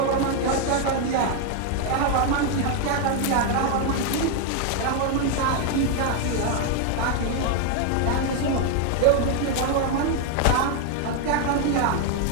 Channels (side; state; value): both; different; correlation 0.01